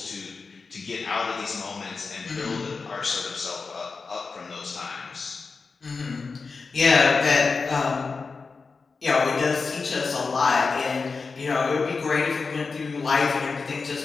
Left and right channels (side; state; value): right; quieter; 4.5 dB